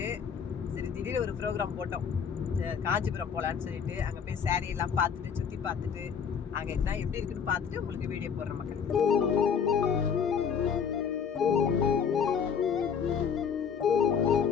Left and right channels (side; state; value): right; quieter; 6.9 dB